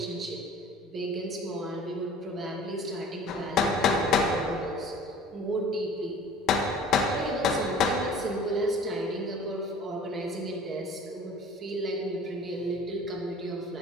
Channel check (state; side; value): normal; both; correlation 0.46